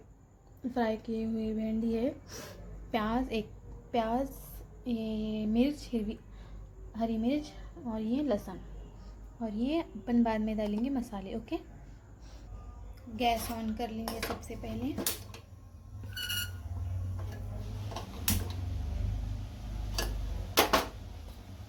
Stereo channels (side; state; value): both; identical; correlation 1.00